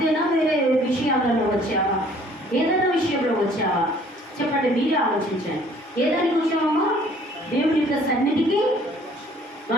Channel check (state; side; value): normal; both; correlation 0.57